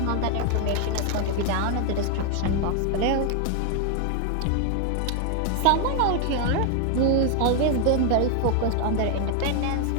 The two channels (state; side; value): different; both; correlation 0.00